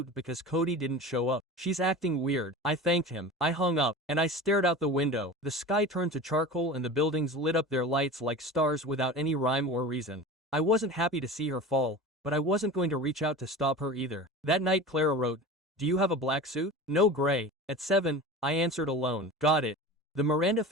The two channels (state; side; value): normal; both; correlation 0.33